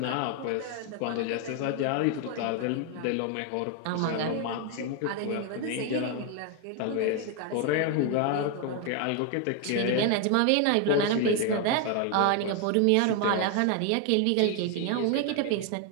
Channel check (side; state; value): both; different; correlation 0.01